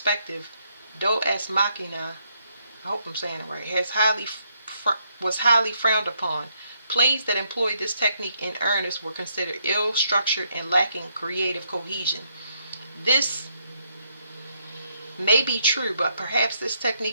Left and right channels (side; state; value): both; inverted; correlation -0.75